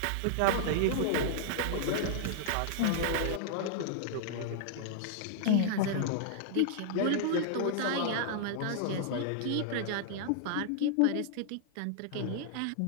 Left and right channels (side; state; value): both; different; correlation -0.01